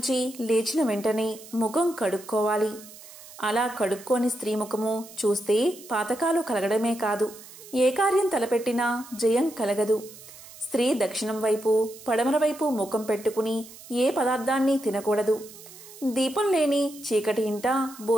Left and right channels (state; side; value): noise; right; hiss, 18 dB below the sound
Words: లేచిన వెంటనే ముఖం కడుక్కోవాలి. అలా కడుక్కోని స్త్రీ ముఖము చూస్తే పాతకాలు కలగడమే కాదు, ఏ కార్యం తలపెట్టినా జయం కలగదు. స్త్రీ దక్షిణం వైపు, పడమర వైపు ముఖం పెట్టుకుని ఏ పదార్థాన్ని తినకూడదు. దీపం లేని చీకటి ఇంట